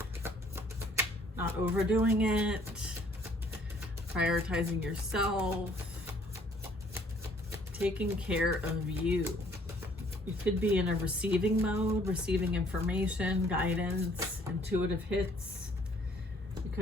Not overdoing it, prioritizing yourself, taking care of you. You could be in a receiving mode, receiving information, guidance, intuitive hits. You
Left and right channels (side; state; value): both; normal; correlation 0.60